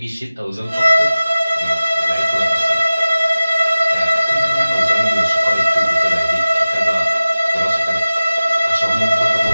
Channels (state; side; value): inverted; both; correlation -0.96